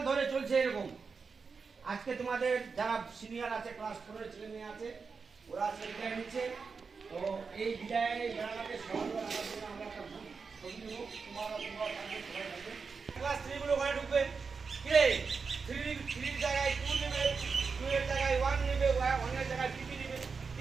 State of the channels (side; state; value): left; quieter; 5.1 dB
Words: ধরে চলছে এরকম। আজকে তোমাদের যারা সিনিয়র আছে, ক্লাস 4 এর ছেলে মেয়ে আছে, ওরা আজকে বিদায় নিচ্ছে। তো এই বিদায় বেড়াটাকে স্মরণ করার জন্য আমরা একটা ছবি নেব। তোমরা থাকবে, সবাই থাকবে। ক্লাস 3 গুলো ঘরে ঢুকবে। কিরে, 3 জায়গায় 2 নেবে, 2 এর জায়গায় 1 নেবে, 1 এর জায়গায় PP নেবে।